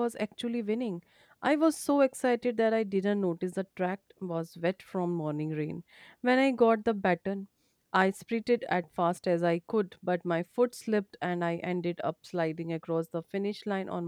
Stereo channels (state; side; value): identical; both; correlation 1.00